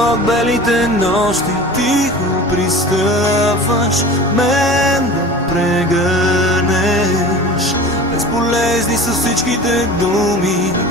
белите нощи. Тихо пристъпваш мен да прегърнеш. Безполезни са всичките думи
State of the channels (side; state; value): both; normal; correlation 0.37